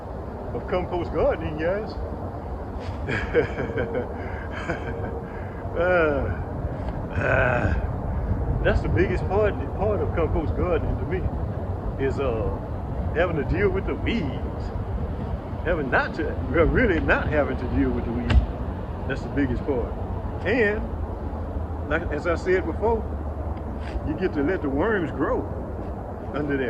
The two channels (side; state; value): both; identical; correlation 1.00